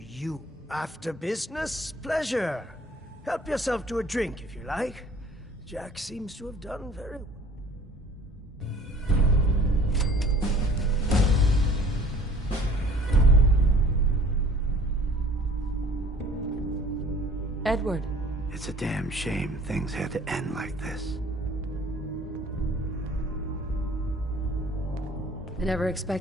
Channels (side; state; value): both; normal; correlation 0.50